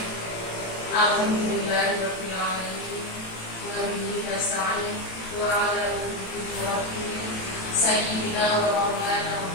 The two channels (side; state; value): right; late; 27 ms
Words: Alhamdulillahirabbil alamin. Wa bihi nasta'in wa 'ala alihi sayyidina wa maulana